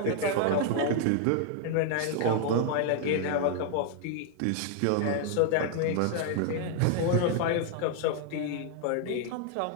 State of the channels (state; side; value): different; both; correlation 0.00